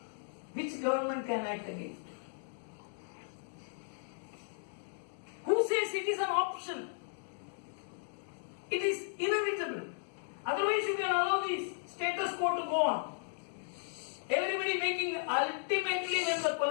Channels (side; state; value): right; silent; digital silence